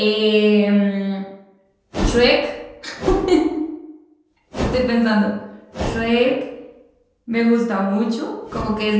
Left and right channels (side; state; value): both; identical; correlation 1.00